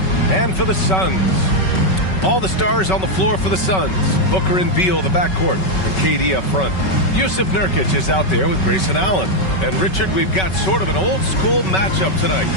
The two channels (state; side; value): late; right; 5.3 ms